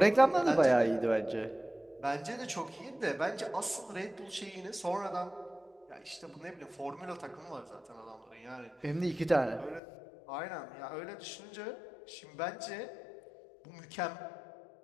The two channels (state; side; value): drops out; right; at 9.8 s